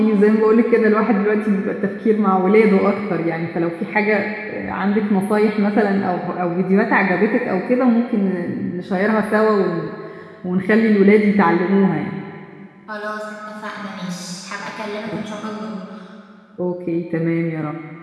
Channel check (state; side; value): identical; both; correlation 1.00